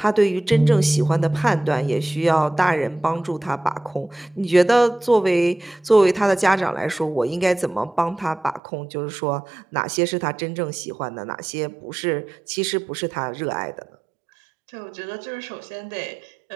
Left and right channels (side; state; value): left; drops out; at 8.6 s